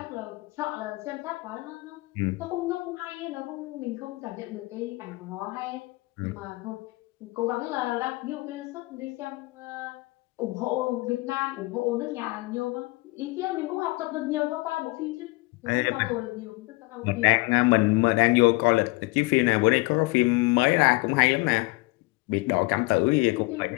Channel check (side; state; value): right; quieter; 23.8 dB